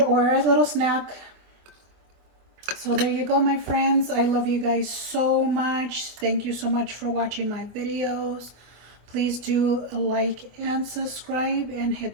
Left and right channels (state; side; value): late; left; 24 ms